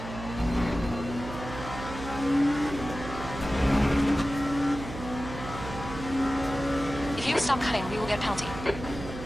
If you don't stop cutting, we will get a penalty.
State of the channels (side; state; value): right; noise; hum, 10 dB below the sound